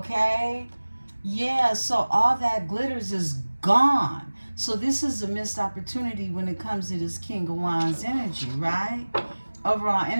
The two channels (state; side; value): inverted; both; correlation -1.00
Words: Yeah, so all that glitters is gone. So this is a missed opportunity when it comes to this King of Wands energy, right? Overall